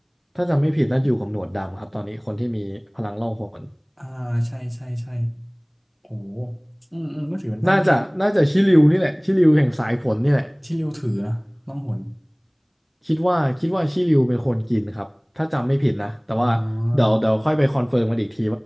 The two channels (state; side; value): identical; both; correlation 1.00